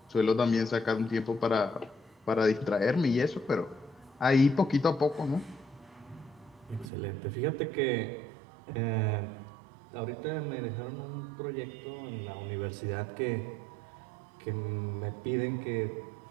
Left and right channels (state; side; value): drops out; left; at 6.9 s